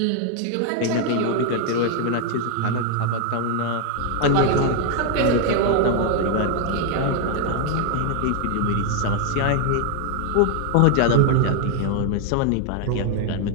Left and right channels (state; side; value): different; both; correlation 0.00